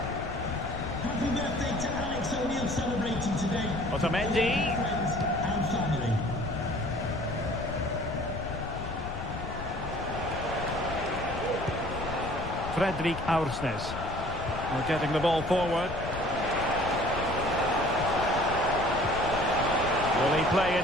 Happy birthday to Alex O'Neill celebrating today. Otamendi. Friends and family. Fredrik Aursnes. We're getting the ball forward. Will he play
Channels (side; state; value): left; noise; rumble, 8 dB below the sound